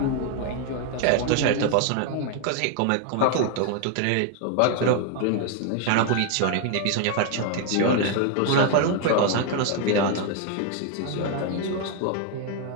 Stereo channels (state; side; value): different; both; correlation 0.01